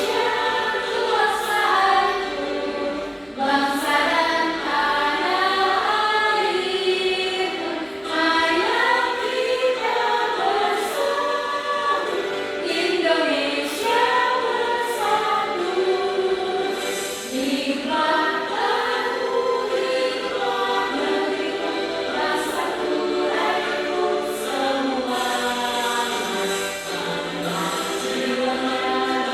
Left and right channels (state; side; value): identical; both; correlation 1.00